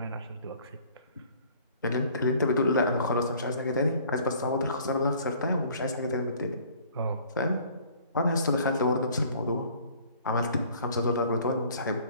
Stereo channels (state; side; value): inverted; both; correlation -0.54